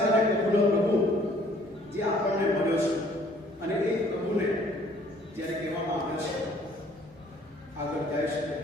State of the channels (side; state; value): both; normal; correlation 0.59